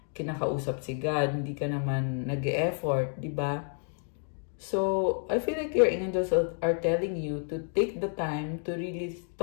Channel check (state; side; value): silent; right; 58 dB below the other